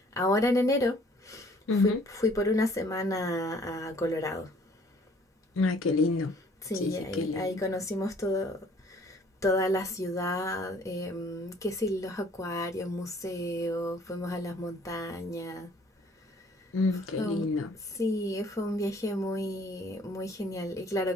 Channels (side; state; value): both; normal; correlation 0.57